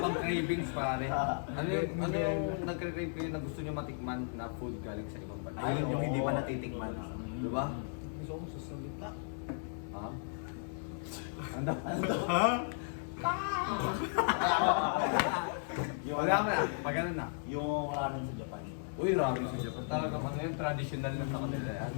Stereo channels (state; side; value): silent; right; digital silence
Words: cravings pare. Ano yung nagre-crave kayo na gusto nyo matikman na food galing sa ibang bansa? Ayun yung hindi pa oo. natitikman. Di ba? Gusto ko sa salita. Ha? Ano? Yung Wala mo na. Pag ano na. Yung ramen sa Japan. Uy, ramen sa Japan. Talaga ano yun, traditional na sa kanila yan.